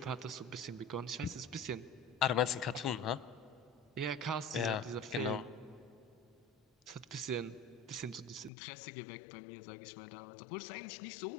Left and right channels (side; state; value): right; drops out; at 8.5 s